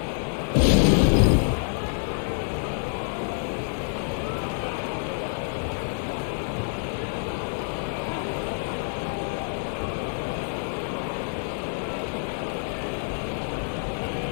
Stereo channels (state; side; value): silent; right; 60 dB below the other